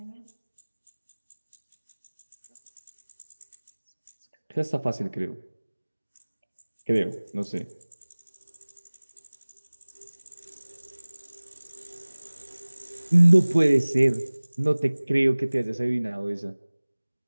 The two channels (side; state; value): both; inverted; correlation -1.00